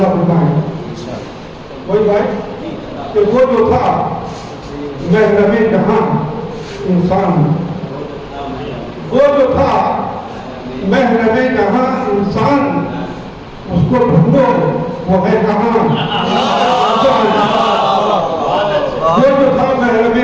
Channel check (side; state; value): both; identical; correlation 1.00